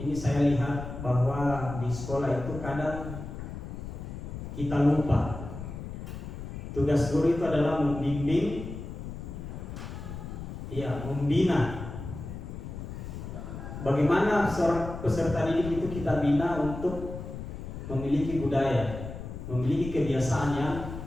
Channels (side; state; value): left; noise; rumble, 9 dB below the sound